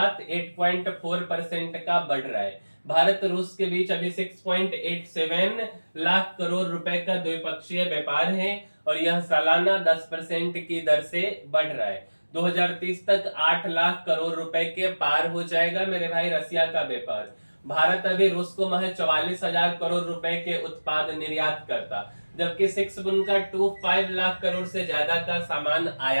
8.4% का बढ़ रहा है। भारत रूस के बीच अभी 6.87 लाख करोड़ रुपए का द्विपक्षीय व्यापार है और यह सालाना 10% की दर से बढ़ रहा है। 2030 तक 8 लाख करोड़ रुपए के पार हो जाएगा मेरे भाई रसिया का व्यापार। भारत अभी रूस को महज 44,000 करोड़ रुपए के उत्पाद निर्यात करता, जबकि 6.25 लाख करोड़ से ज्यादा का सामान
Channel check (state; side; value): inverted; both; correlation -1.00